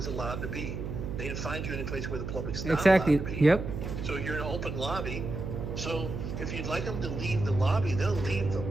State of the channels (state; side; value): noise; right; hum, 5 dB below the sound